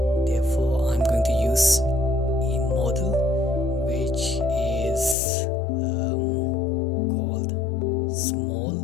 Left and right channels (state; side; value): drops out; right; at 5.2 s